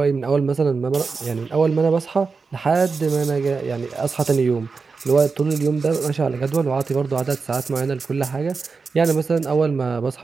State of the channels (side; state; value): left; quieter; 4.7 dB